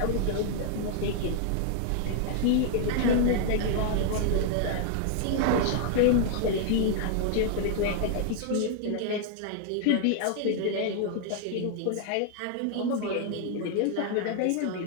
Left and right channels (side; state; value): both; different; correlation 0.00